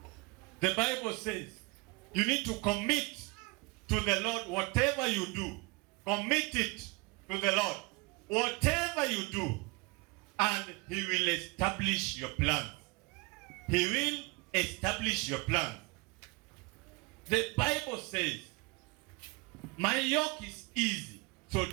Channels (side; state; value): left; quieter; 26.3 dB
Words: The Bible says you need to commit to the Lord whatever you do. Commit it to the Lord. Whatever you do, and He will establish your plans. He will establish your plans. The Bible says, my yoke is easy, so